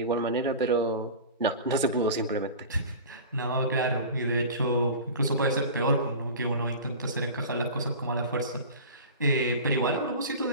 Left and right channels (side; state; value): both; inverted; correlation -0.34